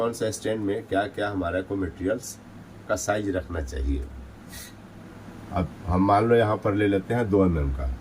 स्टैंड में क्या क्या हमारा को मटेरियल्स का साइज रखना चाहिए। अब हम मान लो यहाँ पर ले लेते हैं 2 mm का,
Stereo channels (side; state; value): both; identical; correlation 1.00